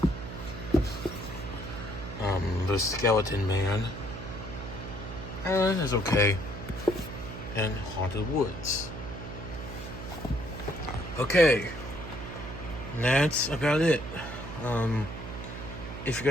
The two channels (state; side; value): noise; right; hum, 9 dB below the sound